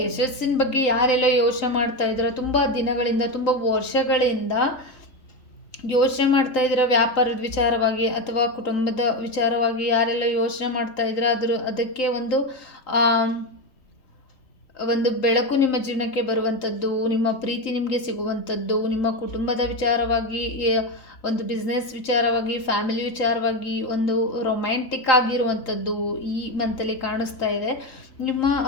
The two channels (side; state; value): right; late; 3.8 ms